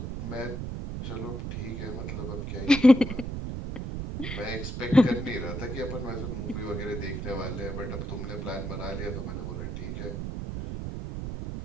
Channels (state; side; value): noise; right; rumble, 5 dB below the sound